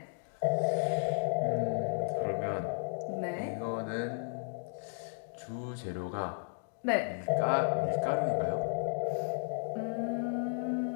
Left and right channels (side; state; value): right; silent; digital silence